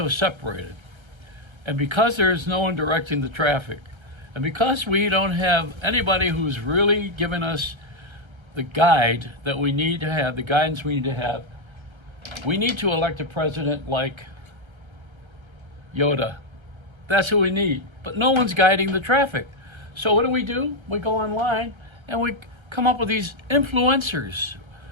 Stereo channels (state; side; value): late; left; 1.3 ms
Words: separated, and because there is no one directing the traffic, and because we don't have anybody who's really giving us the guide that we need to have, the guidance we need to have, we need to elect a president like Yoda. That's who we need. But no one's guiding the traffic. So what do? We go online and we come up with these influencers.